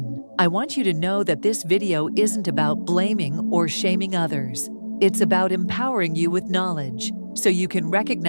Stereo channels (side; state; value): both; inverted; correlation -1.00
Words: I want you to know that this video isn't about blaming or shaming others. It's about empowering you with knowledge so you can